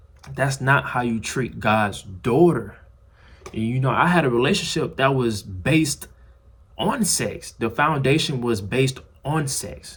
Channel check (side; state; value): both; identical; correlation 1.00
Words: That's not how you treat God's daughter. And I had a relationship that was based on sex. The foundation was based on